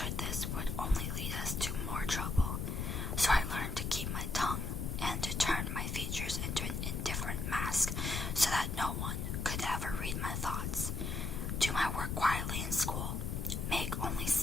this would only lead us to more trouble, so I learned to keep my tongue and to turn my features into an indifferent mask so that no one could ever read my thoughts. Do my work quietly in school, make only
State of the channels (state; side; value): noise; left; rumble, 2 dB below the sound